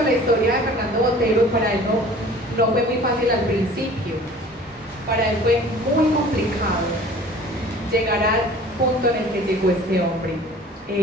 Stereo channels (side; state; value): both; normal; correlation 0.47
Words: la historia de Fernando Botero. Para él no fue muy fácil al principio, para él fue muy complicado llegar al punto en el que llegó este hombre.